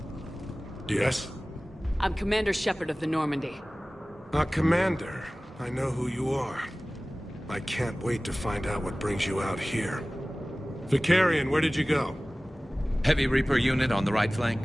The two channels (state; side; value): normal; both; correlation 0.98